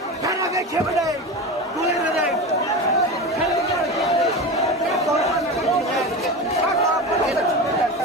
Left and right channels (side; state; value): both; normal; correlation 0.25